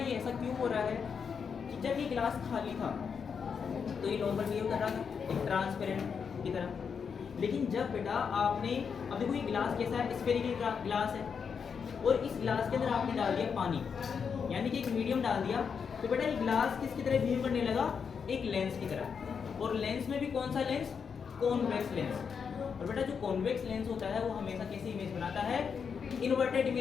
ऐसा क्यों हो रहा है कि जब ये गिलास खाली था तो ये नॉर्मल बिहेव कर रहा था एक ट्रांसपेरेंट की तरह। लेकिन जब बेटा आपने, अब देखो ये गिलास कैसा है, स्फेरिकल गिलास है और इस गिलास के अंदर आपने डाल दिया पानी, यानी कि एक मीडियम डाल दिया, तो बेटा ये गिलास किसकी तरह बिहेव करने लगा, एक लेंस की तरह। और लेंस में भी कौन सा लेंस, कॉन्वेक्स लेंस। और बेटा जो कॉन्वेक्स लेंस होता है वो हमेशा कैसी इमेज बनाता है, इन्वर्टेड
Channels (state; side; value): quieter; right; 6.4 dB